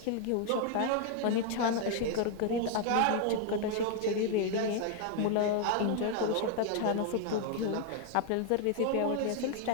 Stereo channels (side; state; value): both; different; correlation 0.00